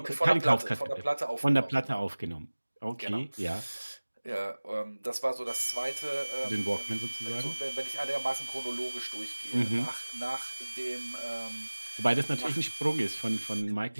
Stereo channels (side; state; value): both; inverted; correlation -1.00